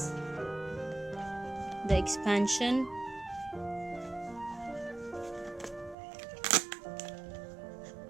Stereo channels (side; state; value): left; drops out; at 6.0 s